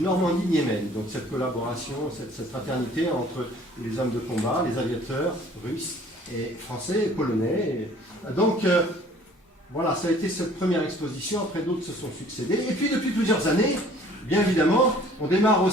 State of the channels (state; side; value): normal; both; correlation 0.53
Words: Donc cette collaboration, cette fraternité entre les hommes de combat, les aviateurs russes et français et polonais. Donc voilà, ça a été cette première exposition, après d'autres se sont succédés. Et puis depuis plusieurs années, bien évidemment, on démarre